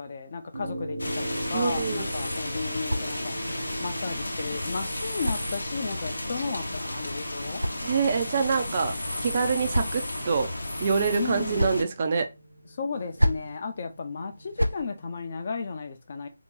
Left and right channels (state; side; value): inverted; both; correlation -0.85